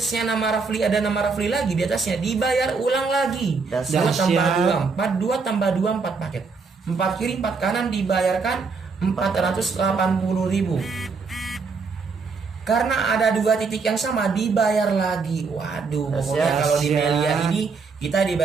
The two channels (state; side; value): quieter; left; 4.7 dB